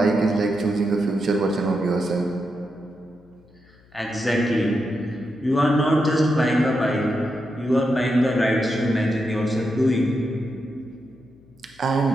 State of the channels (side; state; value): left; noise; hum, 29 dB below the sound